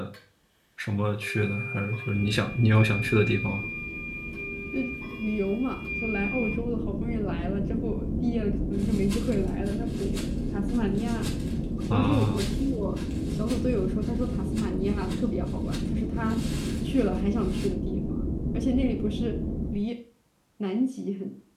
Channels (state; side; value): identical; both; correlation 1.00